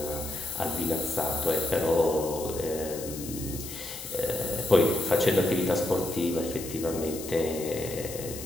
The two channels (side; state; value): left; noise; hiss, 11 dB below the sound